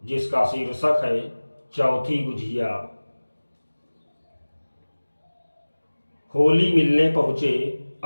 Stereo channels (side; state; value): both; inverted; correlation -1.00